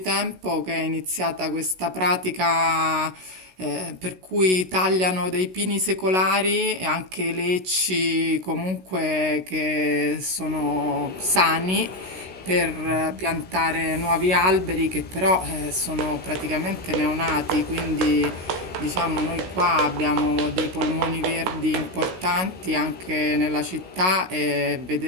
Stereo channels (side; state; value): left; late; 16 ms